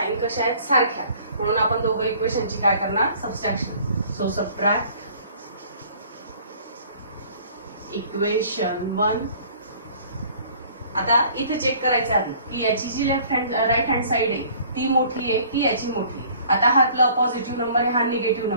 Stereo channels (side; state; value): both; inverted; correlation -0.53